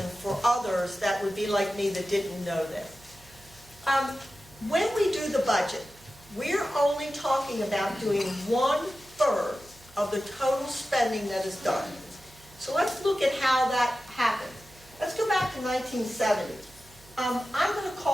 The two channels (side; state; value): right; noise; hum, 25 dB below the sound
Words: for others that would be like me that didn't know this. When we do the budget, we're only talking about doing 1/3 of the total spending that is done. So let's look at how that happened. Let's go back to 1970. I'm going to